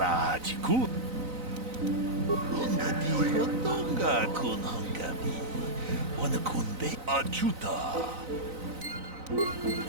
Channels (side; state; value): left; late; 4.0 ms